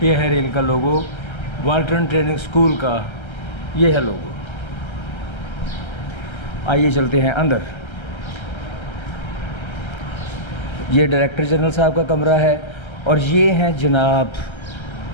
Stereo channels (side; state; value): right; late; 1.3 ms